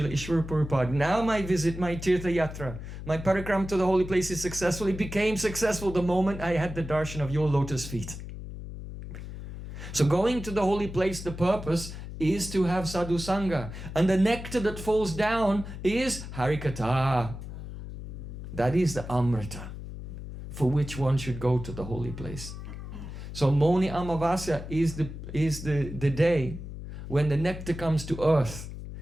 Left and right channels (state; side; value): noise; left; hum, 10 dB below the sound